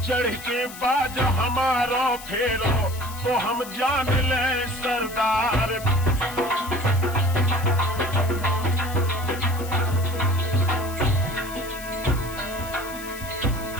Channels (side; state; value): left; noise; hiss, 14 dB below the sound